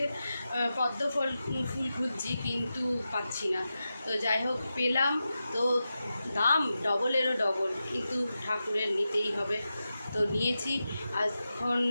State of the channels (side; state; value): both; inverted; correlation -0.91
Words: পদ্ম ফুল খুঁজছি, কিন্তু পাচ্ছি না। তো যাই হোক পেলাম, তো দাম ডবলেরও ডবল, কিন্তু ঠাকুরের নিতেই হবে, তো নিয়েছি। এখন